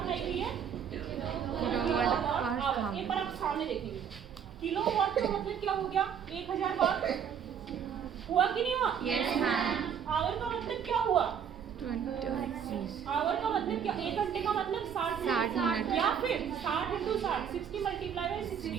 गई है? Kilowatt hour. एक बार आप सामने देखेंगे, किलोवाट का मतलब क्या हो गया? 1000 वाट हुआ कि नहीं हुआ? Yes ma'am. आवर का मतलब क्या हुआ? 20। आवर का मतलब क्या? 1 घंटे का मतलब 60 मिनट। या फिर 60 × 60, 60 मल्टीप्लाई बाय 60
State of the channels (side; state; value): left; quieter; 7.9 dB